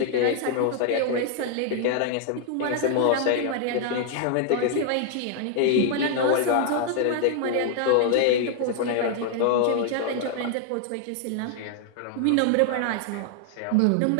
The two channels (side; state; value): both; different; correlation 0.00